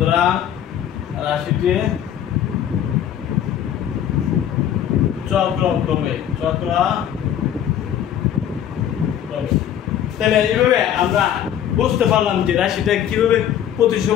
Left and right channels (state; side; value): quieter; right; 10.1 dB